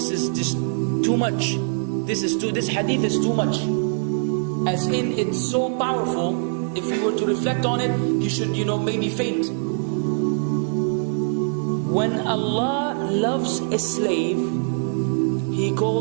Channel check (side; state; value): left; silent; digital silence